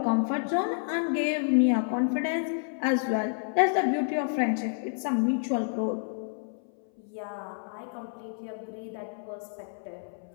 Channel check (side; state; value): right; silent; 58 dB below the other